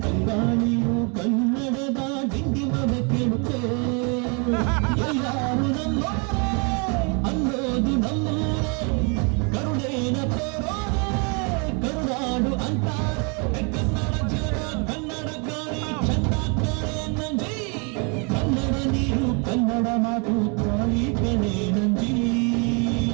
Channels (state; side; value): quieter; left; 34.6 dB